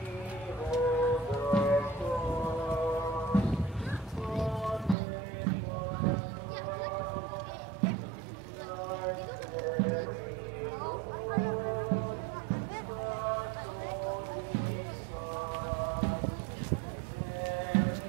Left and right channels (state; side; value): drops out; left; at 5.0 s